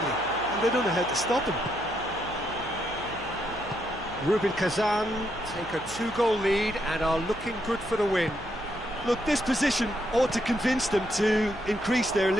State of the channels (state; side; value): noise; right; hum, 18 dB below the sound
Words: and they don't know how to stop him. Rubin Kazan take a 2-goal lead and are looking good for the win. Look, this position ought to convince them to increase their